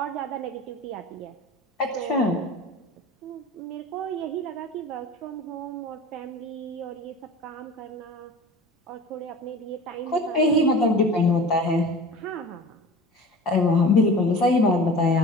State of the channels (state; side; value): normal; both; correlation 0.38